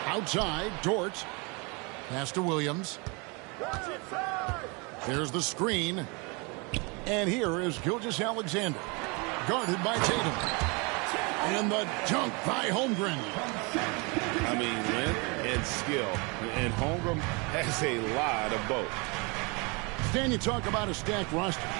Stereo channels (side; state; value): left; quieter; 30.0 dB